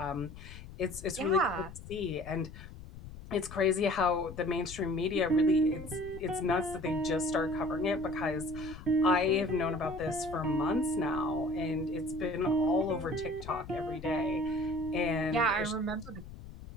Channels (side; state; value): left; noise; rumble, 14 dB below the sound